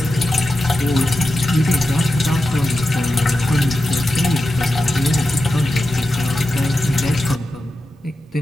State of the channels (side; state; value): both; normal; correlation 0.91